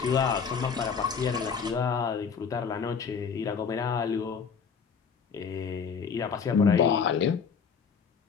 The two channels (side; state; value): right; quieter; 6.2 dB